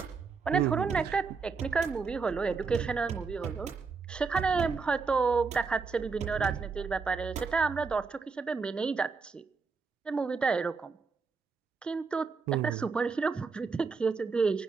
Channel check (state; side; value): quieter; left; 4.9 dB